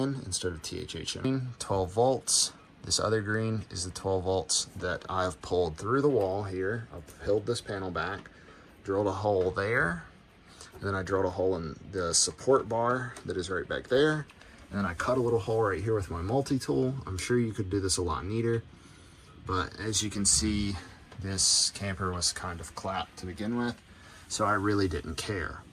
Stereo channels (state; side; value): identical; both; correlation 1.00